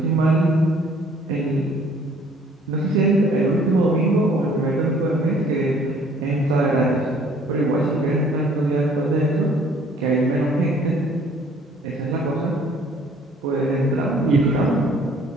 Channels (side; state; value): both; normal; correlation 0.57